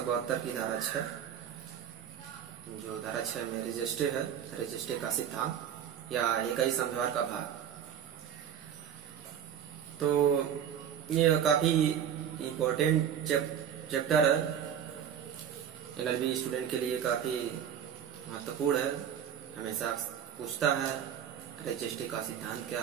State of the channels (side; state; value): left; quieter; 9.0 dB